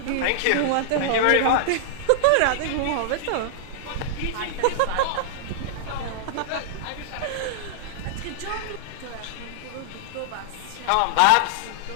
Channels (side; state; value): both; different; correlation -0.01